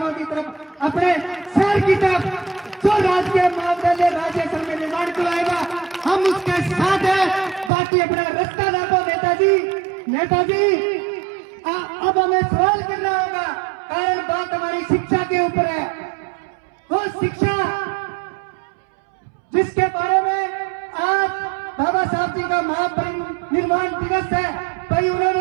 की तरफ, अपने शहर की तरफ। जो राजकीय महाविद्यालय राजवेसर में निर्माण कराएगा हम उसके साथ हैं। बाकी अपना रास्ता ना दो नेताजी, अब हमें सवाल करना होगा, कारण बात हमारी शिक्षा के ऊपर है। वो शिक्षा जिसके बारे में आज बाबा साहब जी का महापरिनिर्वाण दिवस है, भाई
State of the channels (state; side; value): drops out; left; at 7.7 s